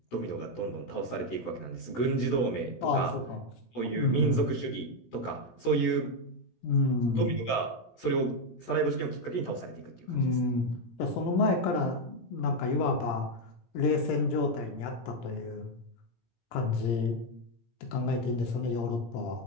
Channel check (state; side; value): late; right; 17 ms